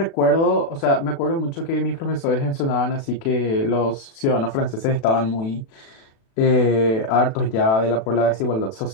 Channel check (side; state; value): right; late; 36 ms